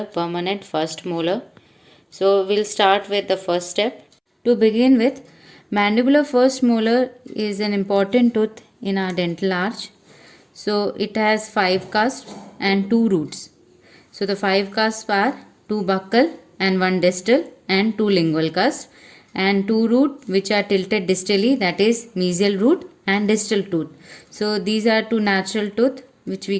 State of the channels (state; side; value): identical; both; correlation 1.00